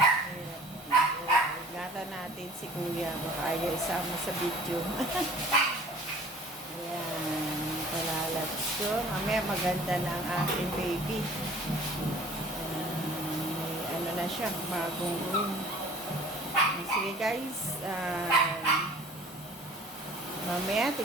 Gata natin si Kuya. Baka ayaw isama sa video. Ayan. Palalat ko. Mamaya maganda na ang aking baby. May na siya. Bagong room. Sige guys. Mamaya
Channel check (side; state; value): both; normal; correlation 0.48